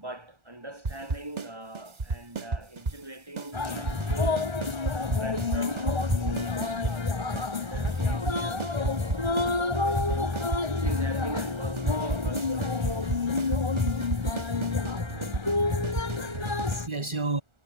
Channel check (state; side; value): late; left; 1.4 ms